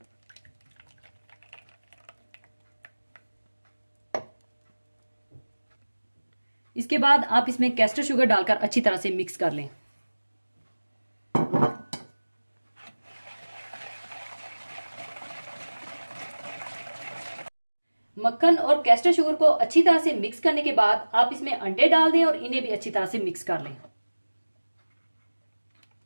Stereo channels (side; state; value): both; inverted; correlation -1.00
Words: इसके बाद आप इसमें कैस्टर शुगर डालकर अच्छी तरह से मिक्स कर लें। मक्खन और कैस्टर शुगर को अच्छी तरह से मिक्स करने के बाद आप इसमें अंडे डाल दें और इन्हें भी अच्छी तरह से मिक्स कर लें।